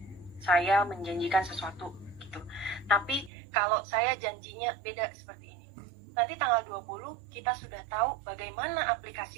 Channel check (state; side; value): drops out; left; at 3.3 s